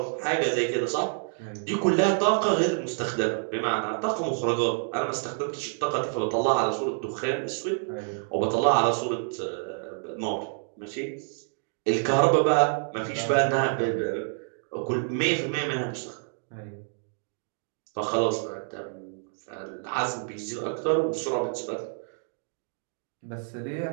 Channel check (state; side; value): silent; left; 59 dB below the other